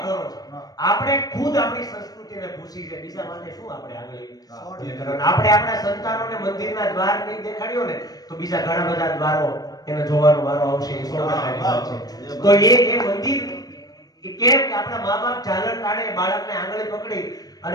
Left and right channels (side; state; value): right; late; 0.19 ms